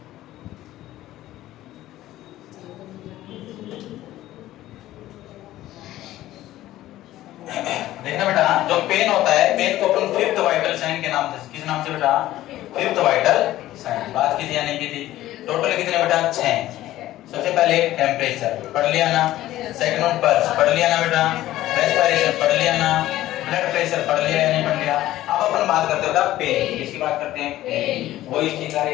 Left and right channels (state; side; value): quieter; right; 14.8 dB